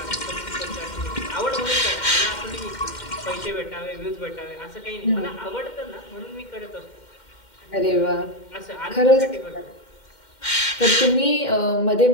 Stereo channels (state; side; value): late; right; 2.1 ms